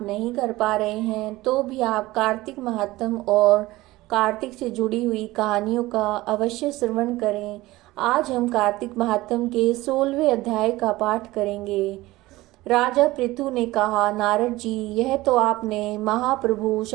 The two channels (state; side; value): quieter; left; 18.7 dB